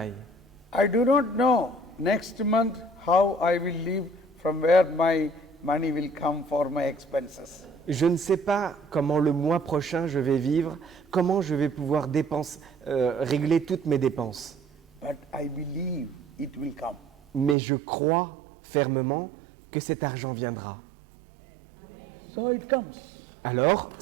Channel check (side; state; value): left; drops out; at 17.6 s